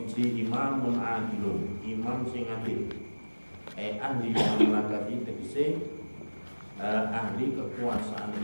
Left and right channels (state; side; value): inverted; both; correlation -1.00